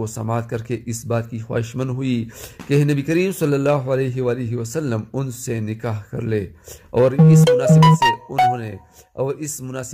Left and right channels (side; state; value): both; identical; correlation 1.00